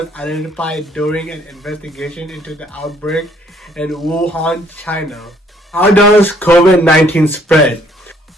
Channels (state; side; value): normal; both; correlation 0.64